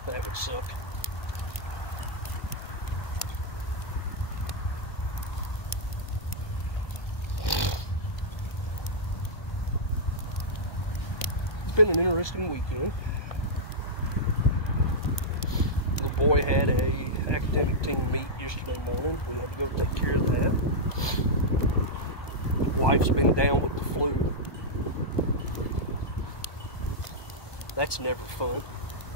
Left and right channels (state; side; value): late; right; 1.2 ms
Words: That would suck. It's been an interesting weekend. The boy had a academic team meet yesterday morning. We had to go take care of that. His wife's been down with the flu. That's never fun.